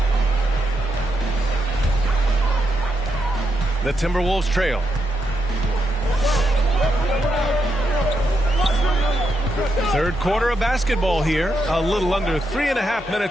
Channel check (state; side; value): normal; both; correlation 0.82